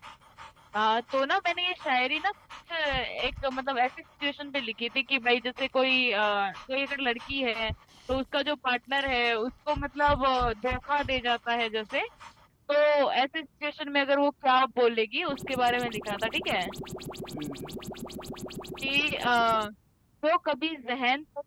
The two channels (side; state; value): both; identical; correlation 1.00